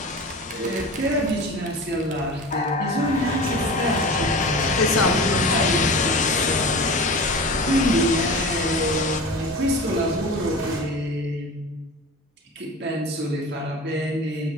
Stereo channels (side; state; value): both; normal; correlation 0.34